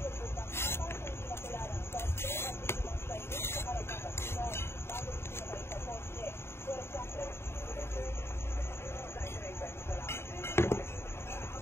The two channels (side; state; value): right; late; 0.12 ms